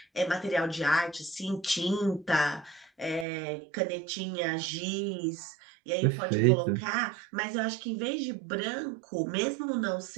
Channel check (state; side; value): drops out; left; at 3.2 s